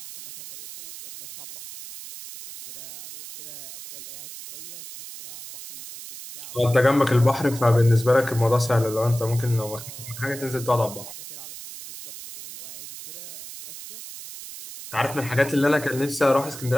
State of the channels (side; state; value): right; noise; hiss, 13 dB below the sound